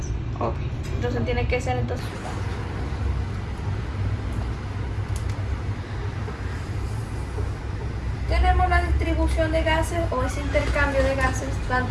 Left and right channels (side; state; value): both; identical; correlation 1.00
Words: Okay. Entonces tiene que ser entonces. Tenemos la distribución de gases o ese intercambio de gases